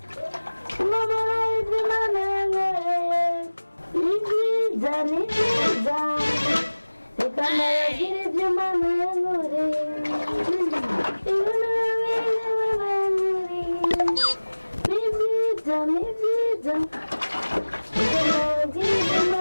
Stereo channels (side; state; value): both; inverted; correlation -1.00